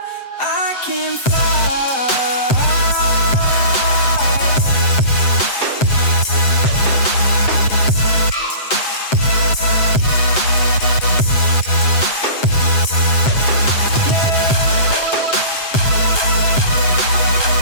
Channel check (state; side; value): late; right; 7.8 ms